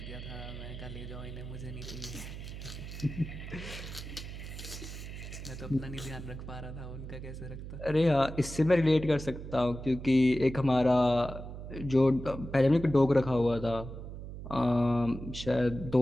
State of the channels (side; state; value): right; noise; hum, 10 dB below the sound